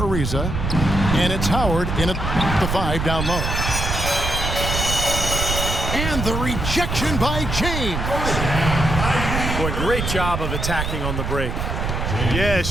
and it's Howard in at the 5 down low. And the rejection by James. Boy, great job of attacking on the break. Yeah, it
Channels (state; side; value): noise; right; rumble, 2 dB below the sound